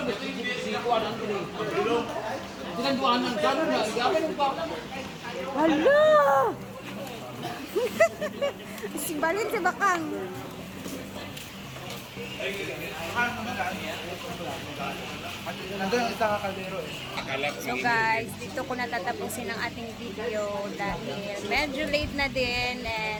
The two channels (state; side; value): identical; both; correlation 1.00